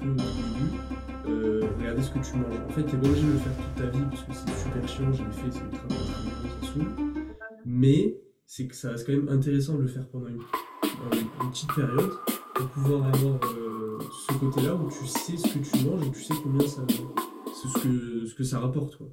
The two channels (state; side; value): identical; both; correlation 1.00